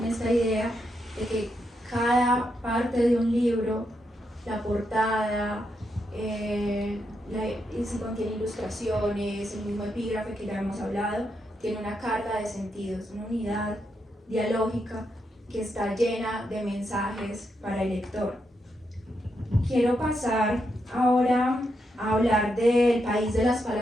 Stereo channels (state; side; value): normal; both; correlation 0.82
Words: esta idea de que cada parte de un libro, la portada, si contiene ilustraciones, el mismo epígrafe que ya hemos hablado, tiene una carga de sentidos, una unidad dialógica que está llena de mensajes para el lector. Quiero pasar ahora a hablar del País de las